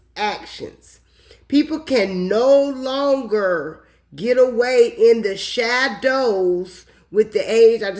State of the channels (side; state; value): both; identical; correlation 1.00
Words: actions. People can no longer get away in the shadows with the age. I